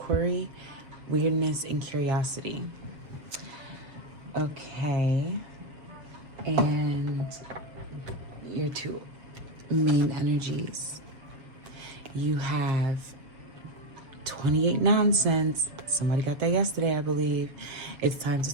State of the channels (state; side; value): late; left; 7.2 ms